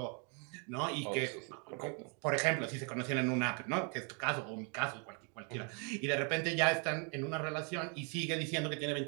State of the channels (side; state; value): left; quieter; 37.1 dB